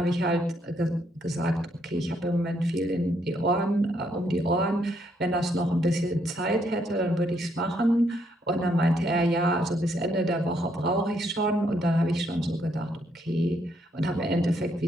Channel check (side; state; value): both; normal; correlation 0.73